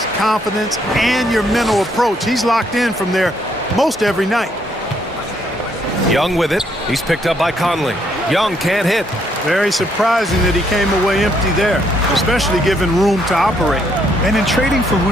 confidence, and your mental approach. He's locked in from there most every night. Young with it. He's picked up by Conley. Young can't hit. Very surprising that he came away empty there, especially given room to operate. And in trading for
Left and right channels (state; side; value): normal; both; correlation 0.71